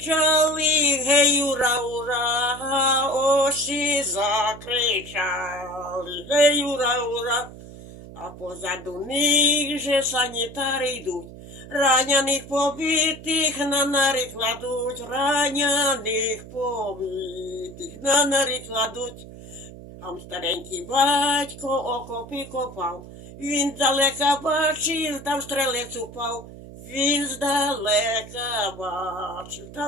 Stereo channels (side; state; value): right; noise; hum, 16 dB below the sound